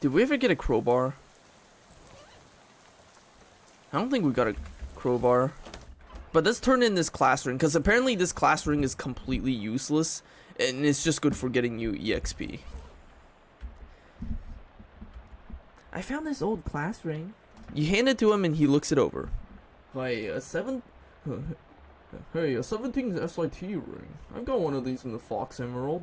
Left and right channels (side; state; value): both; identical; correlation 1.00